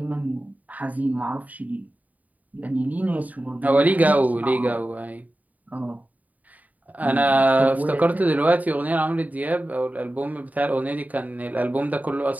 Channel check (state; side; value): late; left; 0.074 ms